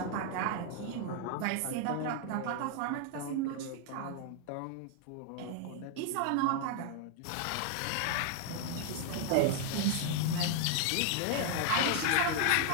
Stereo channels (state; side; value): different; both; correlation 0.00